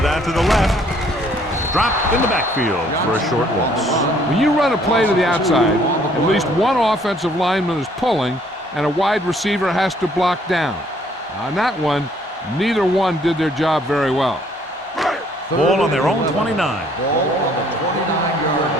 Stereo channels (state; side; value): normal; both; correlation 0.62